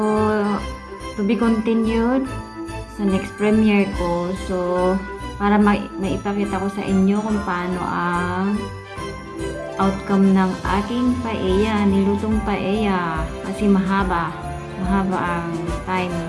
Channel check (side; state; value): both; identical; correlation 1.00